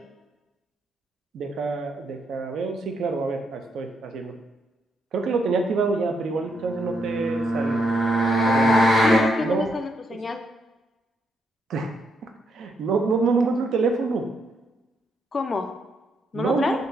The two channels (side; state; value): both; normal; correlation 0.77